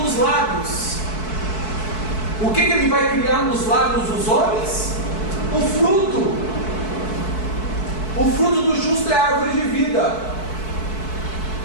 dos lábios. O que Ele vai criar nos lábios dos homens? O fruto. O fruto do justo é a árvore de vida.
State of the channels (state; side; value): late; right; 4.6 ms